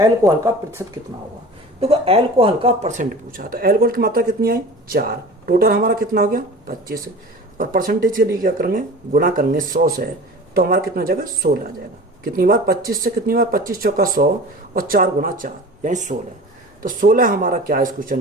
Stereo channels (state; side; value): normal; both; correlation 0.38